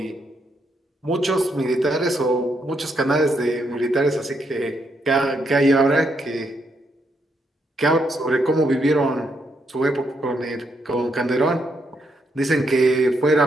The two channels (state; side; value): normal; both; correlation 0.77